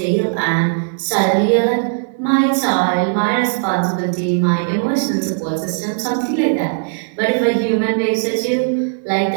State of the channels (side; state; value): left; silent; digital silence